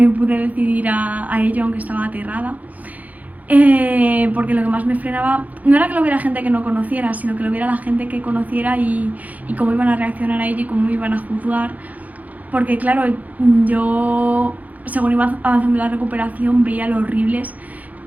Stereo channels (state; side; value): late; left; 0.077 ms